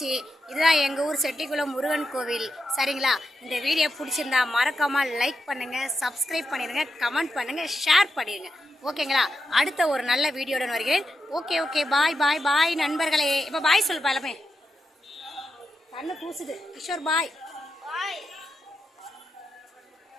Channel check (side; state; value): both; normal; correlation 0.86